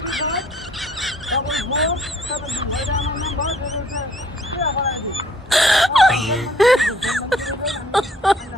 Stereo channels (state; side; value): normal; both; correlation 0.60